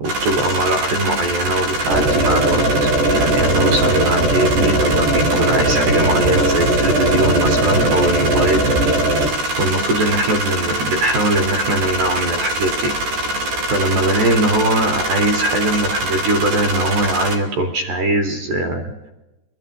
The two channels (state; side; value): late; left; 14 ms